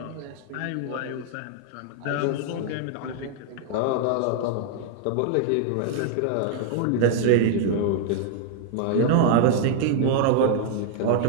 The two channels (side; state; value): both; different; correlation 0.00